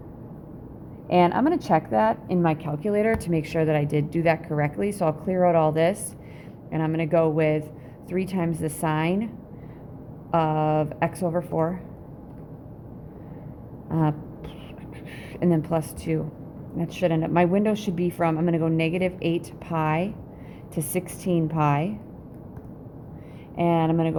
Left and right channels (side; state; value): both; identical; correlation 1.00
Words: And I'm going to check that in my calculator to make sure that I did do that correctly. So I'll clear out all this, and I'm going to go with 3 times the sine of x over 4, and then plus 2. That should end up, my window should be from, I'm going to go negative 8 pi to 16 pi, and I'm going to